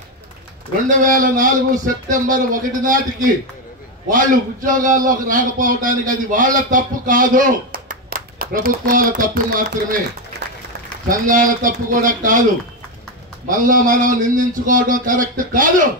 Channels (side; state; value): both; normal; correlation 0.09